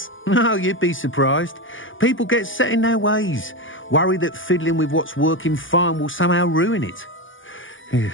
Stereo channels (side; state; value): right; late; 0.57 ms